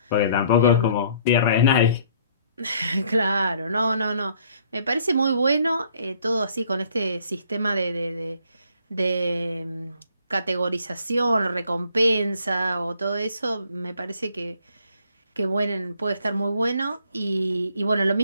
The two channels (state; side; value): inverted; both; correlation -0.62